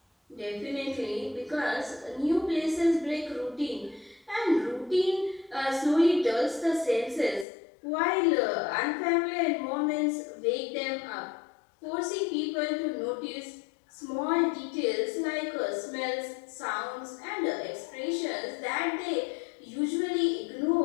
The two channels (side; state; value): right; drops out; at 7.5 s